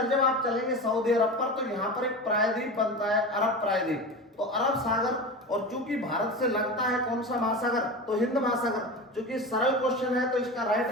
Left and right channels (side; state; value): both; normal; correlation 0.28